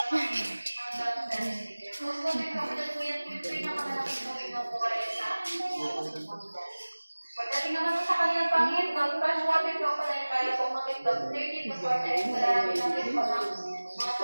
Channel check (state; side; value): inverted; both; correlation -1.00